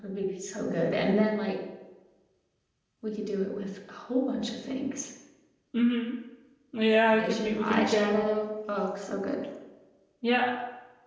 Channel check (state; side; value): identical; both; correlation 1.00